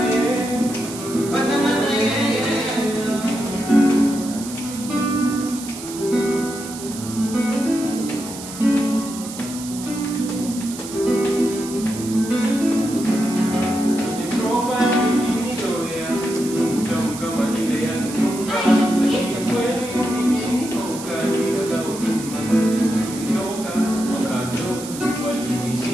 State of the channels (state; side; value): noise; right; hiss, 12 dB below the sound